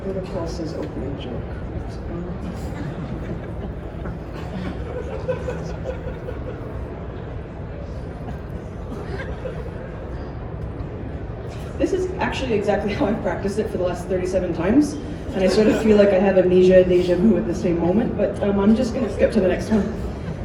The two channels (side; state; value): both; identical; correlation 1.00